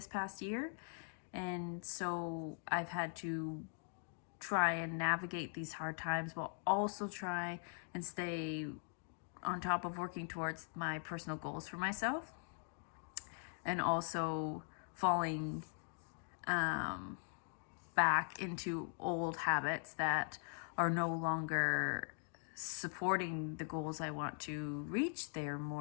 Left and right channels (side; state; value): right; silent; 50 dB below the other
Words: past year. And so I've had to try and navigate these hard times while also try and stay on top of working towards my personal goals for myself, and also falling back into old habits that are no longer supporting the goals I want to reach. They're